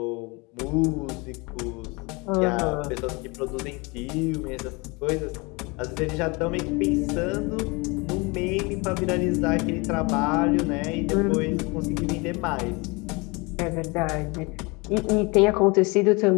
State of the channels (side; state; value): right; quieter; 27.4 dB